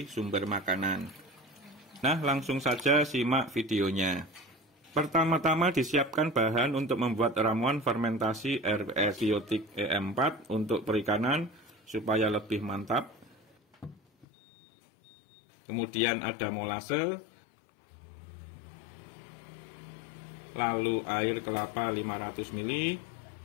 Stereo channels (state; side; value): drops out; right; at 14.2 s